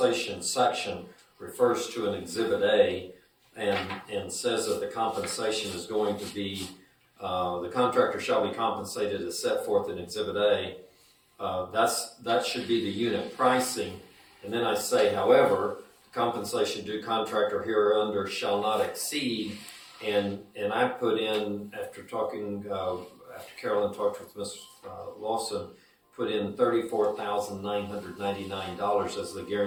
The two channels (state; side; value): identical; both; correlation 1.00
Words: section refers to an exhibit A and says that the compensation is going to be, the contractor shall be compensated as set forth in exhibit A. That should be the unit pricing. And then I say, however, compensation due contractor hereunder shall not exceed, and I put in, after Carolyn talked with Ms. Lawson, put in $34,999 as the